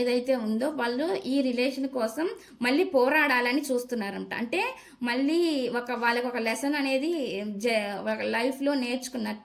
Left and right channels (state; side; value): identical; both; correlation 1.00